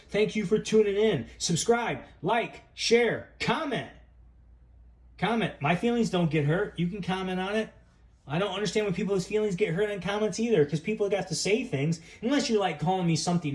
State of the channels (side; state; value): both; identical; correlation 1.00